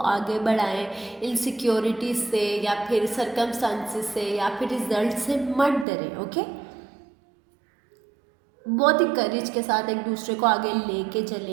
आगे बढ़ाएं, इनसिक्योरिटी से या फिर सरकमस्टांसिस से या फिर रिजल्ट से मत डरें, ओके। बहुत ही करेज के साथ एक दूसरे को आगे लेके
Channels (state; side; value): drops out; left; at 5.9 s